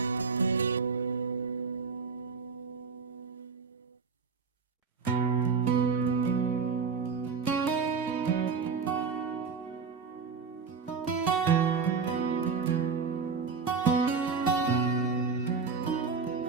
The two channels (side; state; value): left; quieter; 5.3 dB